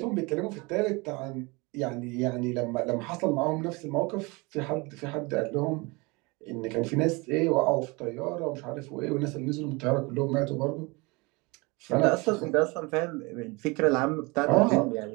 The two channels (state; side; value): quieter; left; 26.3 dB